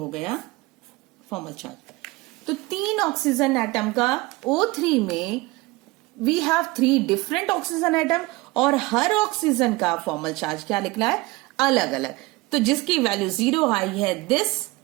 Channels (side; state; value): left; quieter; 22.2 dB